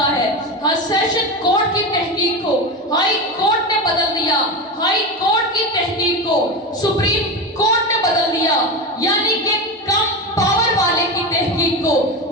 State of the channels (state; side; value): normal; both; correlation 0.20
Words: ہے سیشن کورٹ کی تحقیق کو ہائی کورٹ نے بدل دیا ہائی کورٹ کی تحقیق کو سپریم کورٹ نے بدل دیا یعنی کہ کم پاور والے کی تحقیق کو